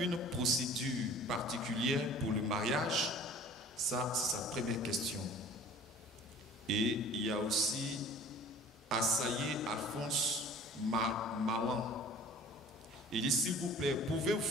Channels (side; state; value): both; normal; correlation 0.47